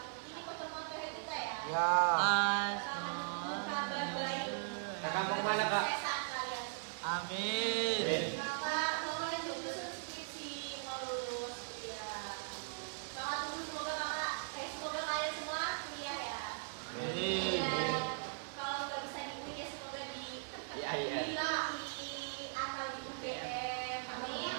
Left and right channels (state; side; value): silent; left; digital silence